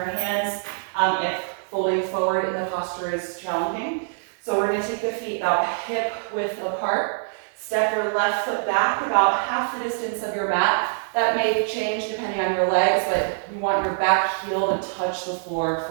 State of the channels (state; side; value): silent; left; digital silence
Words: hands if folding forward in the posture is challenging. So we're going to take the feet about hip width apart. Step your left foot back about half the distance of your mat. That may change depending on your legs, but you want your back heel to touch the floor